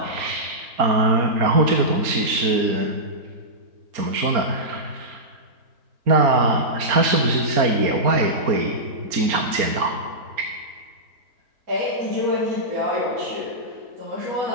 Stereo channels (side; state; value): left; late; 4.3 ms